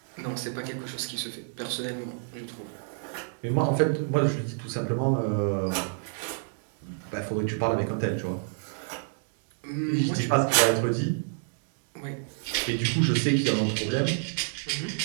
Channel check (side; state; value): left; silent; 59 dB below the other